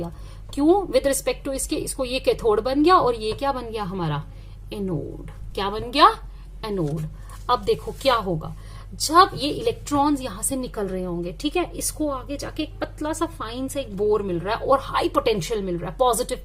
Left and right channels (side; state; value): both; identical; correlation 1.00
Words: क्यों, विद रिस्पेक्ट टू इसको ये कैथोड बन गया और ये क्या बन गया हमारा, एनोड। क्या बन गया, एनोड। अब देखो क्या होगा जब ये इलेक्ट्रॉन्स यहां से निकल रहे होंगे, ठीक है, इसको आगे जाके एक पतला सा फाइन सा एक बोर मिल रहा है और हाई पोटेंशियल मिल रहा है, पॉजिटिव